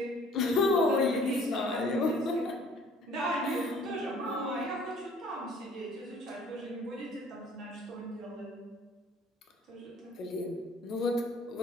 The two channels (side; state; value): both; normal; correlation 0.54